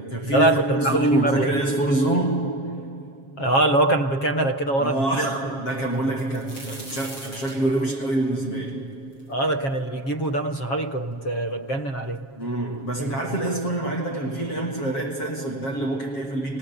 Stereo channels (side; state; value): right; late; 7.4 ms